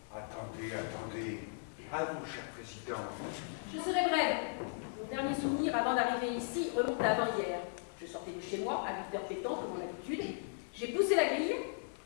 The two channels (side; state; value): right; silent; 53 dB below the other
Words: Attendez, attendez. À vous, cher président. Je serai brève. Mon dernier souvenir avant d'arriver ici remonte à avant-hier. Je sortais de chez moi à 8h pétant, comme mon habitude. J'ai poussé la grille